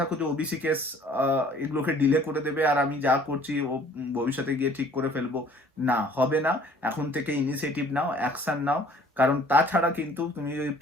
যে ওবিসি কেস এগুলোকে ডিলে করে দেবে আর আমি যা করছি ও ভবিষ্যতে গিয়ে ঠিক করে ফেলবো, না হবে না। এখন থেকে ইনিশিয়েটিভ নাও, অ্যাকশন নাও। কারণ তাছাড়া কিন্তু তুমি যদি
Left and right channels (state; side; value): normal; both; correlation 0.54